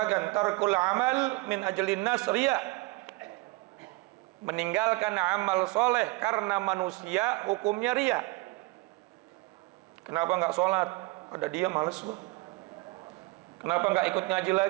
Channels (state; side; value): quieter; left; 23.8 dB